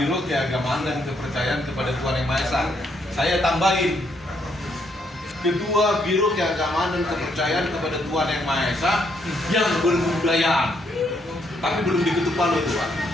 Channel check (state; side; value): normal; both; correlation 0.73